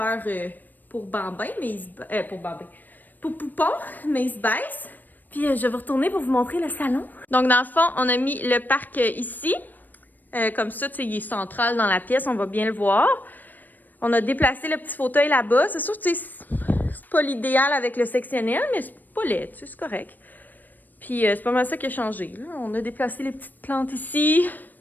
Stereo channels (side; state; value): right; late; 0.088 ms